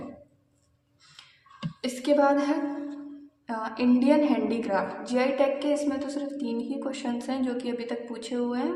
इसके बाद है इंडियन हैंडीक्राफ्ट। जीआई टैग के इसमें तो सिर्फ 3 ही क्वेश्चंस हैं जो कि अभी तक पूछे हुए हैं,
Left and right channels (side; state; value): both; identical; correlation 1.00